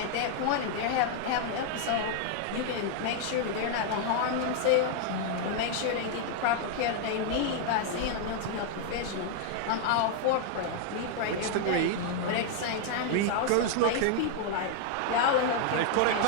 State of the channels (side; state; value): both; different; correlation 0.00